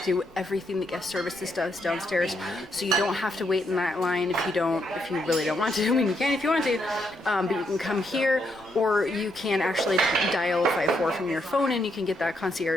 do everything that guest services does downstairs, so you don't have to wait in that line if you really don't want to. I mean, you can if you want to, but you can come here, or you can actually dial 54 from your phone and you can get that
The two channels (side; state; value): both; normal; correlation 0.77